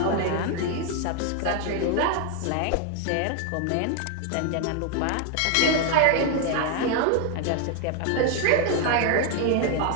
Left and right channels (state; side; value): different; both; correlation 0.01